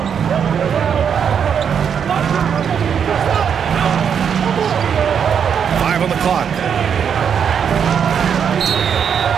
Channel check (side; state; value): left; quieter; 7.5 dB